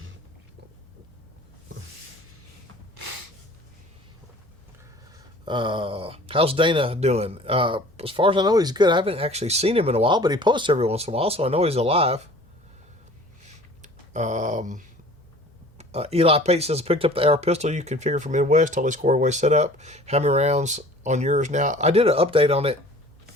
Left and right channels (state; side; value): normal; both; correlation 0.48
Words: How's Dana doing? As far as I know, he's good. I haven't actually seen him in a while, but he posts every once in a while, so I know he's alive. Eli Pate says, picked up the AR pistol you configured for Midwest, totally squared away setup. How many rounds on yours now? I did an update on it